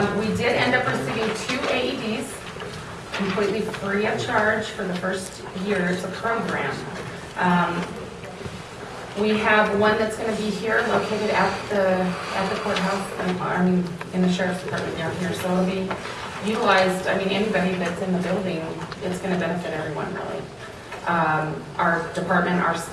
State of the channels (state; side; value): identical; both; correlation 1.00